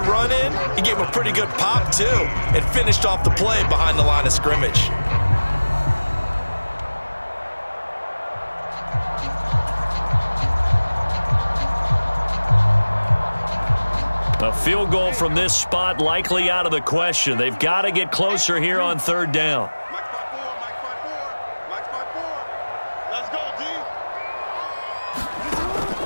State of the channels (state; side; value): inverted; both; correlation -1.00